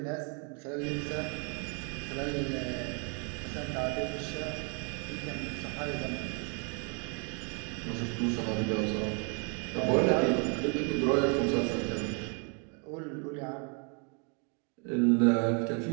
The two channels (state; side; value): quieter; left; 37.2 dB